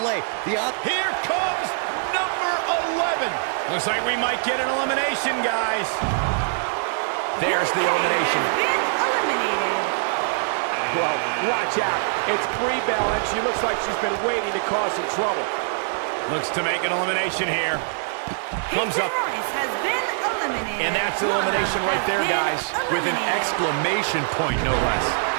Here comes number 11. Looks like we might get an elimination, guys. There's the elimination. Been eliminated. Well, watch out. It's Brie Bell, and she looks like she's been waiting to cause some trouble. Looks to make an elimination here. Comes up. Royce has been eliminated. And that's elimination right there, guys, with an exclamation point, no less.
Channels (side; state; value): left; silent; digital silence